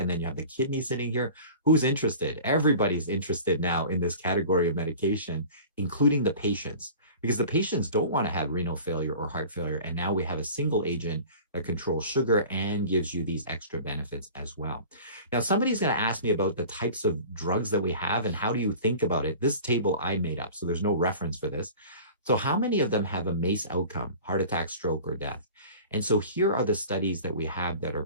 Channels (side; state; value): both; inverted; correlation -0.41